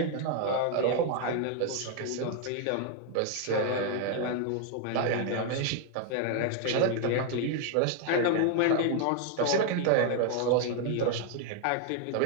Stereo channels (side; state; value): both; different; correlation 0.01